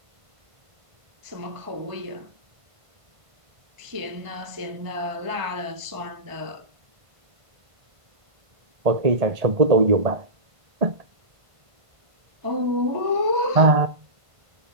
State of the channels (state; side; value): late; left; 1.5 ms